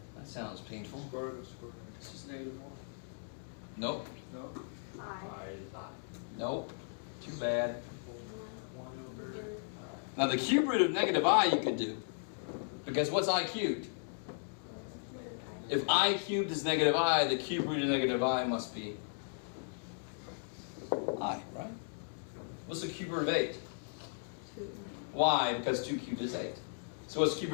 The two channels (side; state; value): right; silent; digital silence